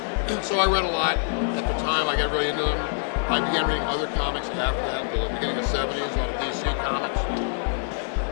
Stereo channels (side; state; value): right; silent; digital silence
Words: So I read a lot. At the time, I got really into them. I began reading other comics after that, the beginning of the 70s, a lot of DC comics.